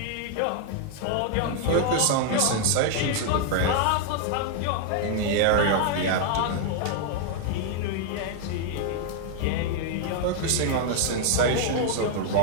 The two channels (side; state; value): both; different; correlation 0.00